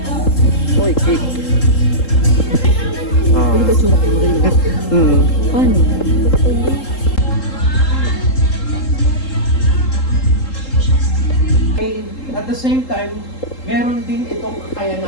Oy, cake. Paano? At the same time, meron din itong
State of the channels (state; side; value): late; right; 3.8 ms